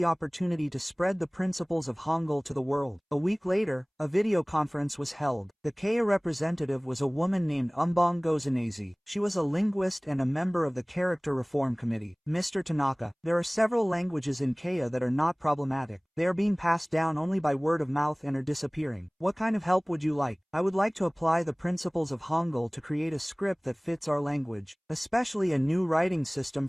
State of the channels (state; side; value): identical; both; correlation 1.00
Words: opportunity to spread the principles of Hangul to the world. A week later, a video conference was held. The Keiya representative was a woman named Umbong Gozanese. She was a linguist and a member of the Character Reform Committee. Mr. Tanaka, there are several languages in Keiya that are not problematic. They are being passed down only by word of mouth and are disappearing. What kind of help would you like? I would like to apply the principles of Hangul to create a script that fits our language, especially a new writing system